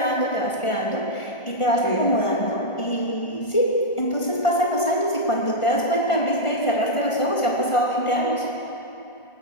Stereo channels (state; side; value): late; right; 1.5 ms